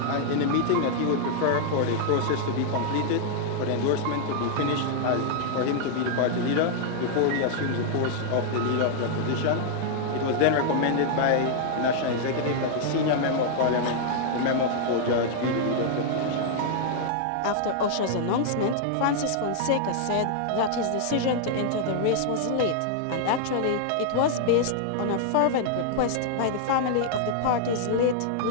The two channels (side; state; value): both; different; correlation -0.01